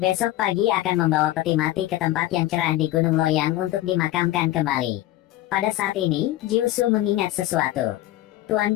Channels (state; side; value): quieter; right; 15.2 dB